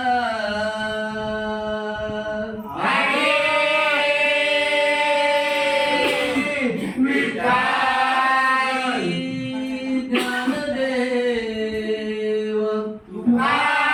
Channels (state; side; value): identical; both; correlation 1.00